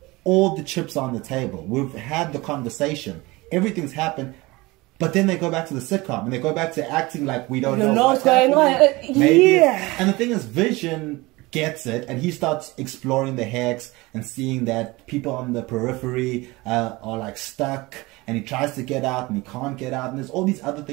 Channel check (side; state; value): left; quieter; 22.1 dB